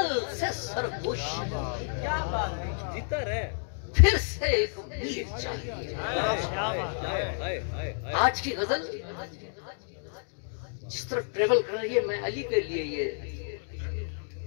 से सरगोश। क्या बात है, जितर है फिर से एक मीर चाहिए। आज की गजल जिस तरह ट्रेवल कर रही है, मैं अली के लिए ये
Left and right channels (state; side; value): silent; right; digital silence